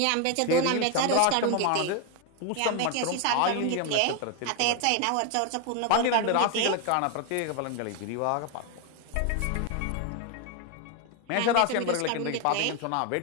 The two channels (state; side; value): different; both; correlation 0.01